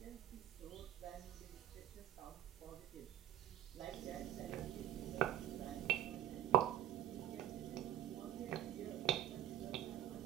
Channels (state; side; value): quieter; left; 12.2 dB